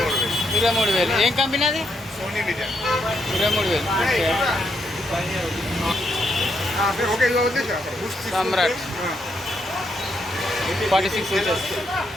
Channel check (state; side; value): normal; both; correlation 0.78